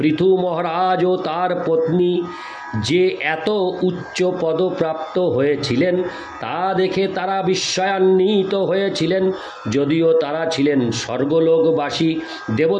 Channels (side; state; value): both; identical; correlation 1.00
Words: মহারাজ ও তার পত্নী যে এত উচ্চ পদপ্রাপ্ত হয়েছিলেন তা দেখে তারা বিস্ময়ান্বিত হয়েছিলেন, যদিও তারা ছিলেন স্বর্গলোকবাসী